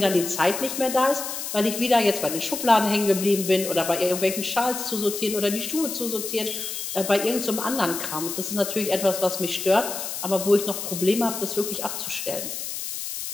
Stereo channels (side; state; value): left; noise; hiss, 6 dB below the sound